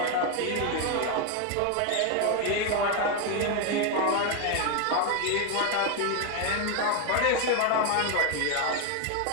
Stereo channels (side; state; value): both; different; correlation 0.01